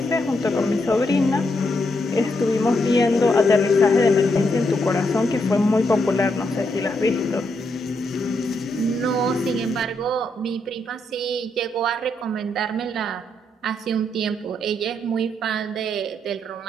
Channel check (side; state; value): both; normal; correlation 0.79